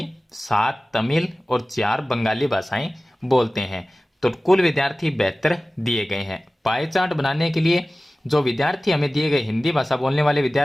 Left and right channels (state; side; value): normal; both; correlation 0.97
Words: 7 तमिल और 4 बंगाली भाषाएं बोलते हैं। तो कुल विद्यार्थी 72 दिए गए हैं। पाई चार्ट बनाने के लिए जो विद्यार्थी हमें दिए गए, हिंदी भाषा बोलने वाले